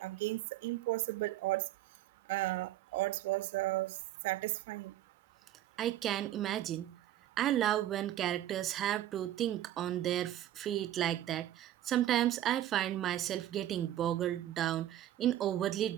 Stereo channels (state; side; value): quieter; left; 12.8 dB